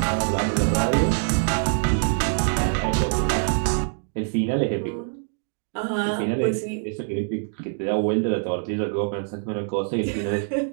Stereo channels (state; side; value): silent; left; digital silence